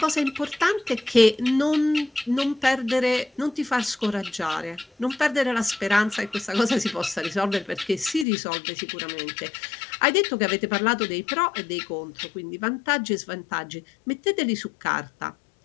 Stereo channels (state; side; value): drops out; right; at 8.2 s